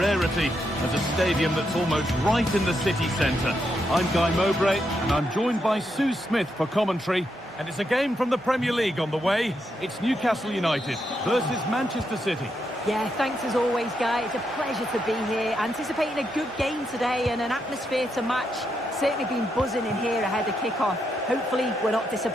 as a stadium that's almost right in the city centre. I'm Guy Mowbray, and I'm joined by Sue Smith for commentary. And it's a game from the Premier League on the way. It's Newcastle United versus Manchester City. Yeah, thanks as always, Guy. It's a pleasure to be here. Anticipating a good game today and an atmosphere to match. Certainly been buzzing in here ahead of kick-off. Hopefully, we're not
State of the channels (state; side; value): normal; both; correlation 0.81